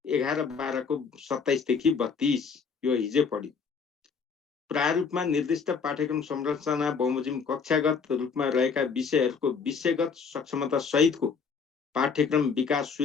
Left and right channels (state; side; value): quieter; right; 5.7 dB